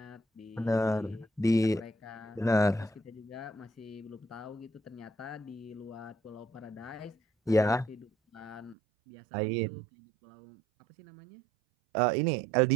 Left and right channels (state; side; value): drops out; left; at 8.8 s